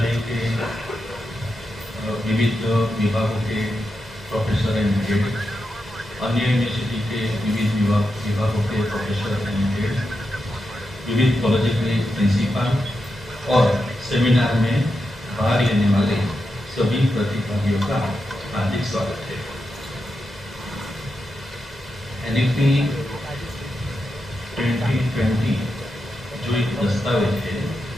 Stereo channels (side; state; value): both; normal; correlation 0.87